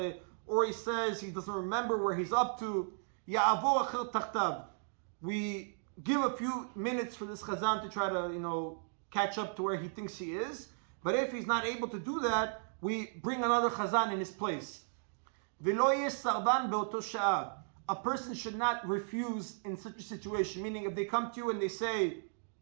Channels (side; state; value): left; silent; digital silence